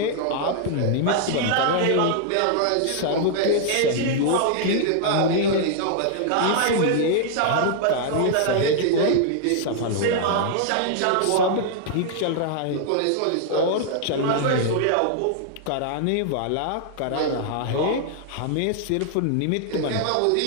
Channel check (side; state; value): both; different; correlation -0.01